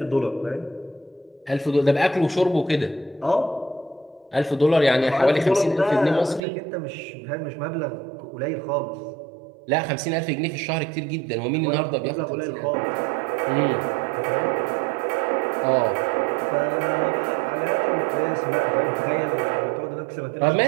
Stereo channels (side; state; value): left; drops out; at 6.4 s